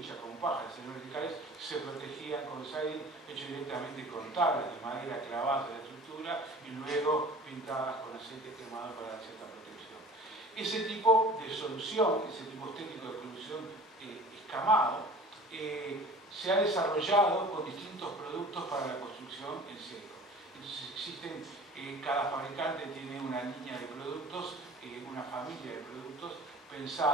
con paja, verticales, se protegían con siding hecho directamente con tablas de madera clavadas en la estructura y luego pintadas con aceite quemado para dar cierta protección. Ese tipo de solución, ese tipo estético de solución escamado, se ha desarrollado con distintos productos para la construcción en seco. Entonces existen, cada fabricante tiene una línea de productos, una familia de productos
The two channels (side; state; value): both; normal; correlation 0.44